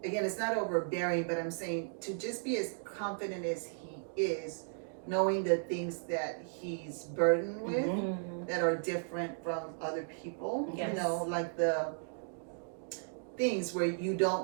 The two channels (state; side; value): silent; left; digital silence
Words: Again, it's not overbearing, but I'm saying to just be as confident as he is, knowing the things that he's burdened with Mhm. that are different from other people, Yes. like the things where you